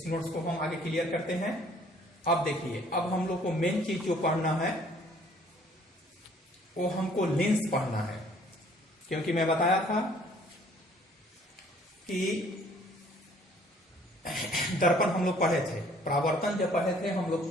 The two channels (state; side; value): normal; both; correlation 0.58